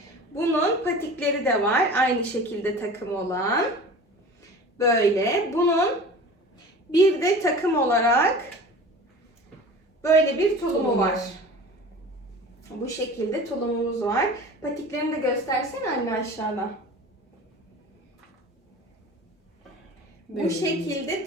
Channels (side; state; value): both; normal; correlation 0.39